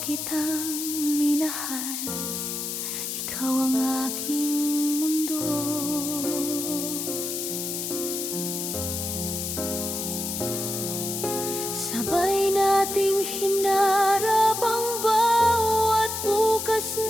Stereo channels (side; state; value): left; noise; hiss, 4 dB below the sound